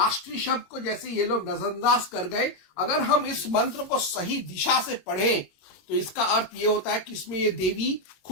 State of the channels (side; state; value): right; late; 22 ms